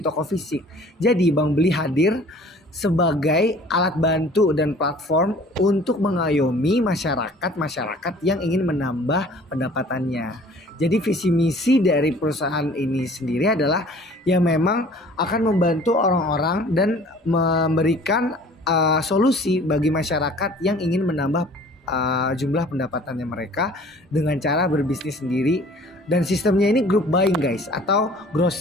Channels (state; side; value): normal; both; correlation 0.50